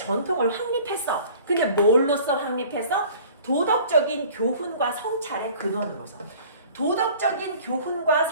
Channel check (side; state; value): both; inverted; correlation -0.48